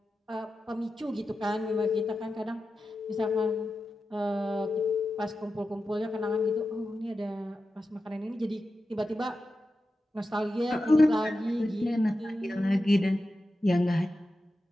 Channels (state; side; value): normal; both; correlation 0.92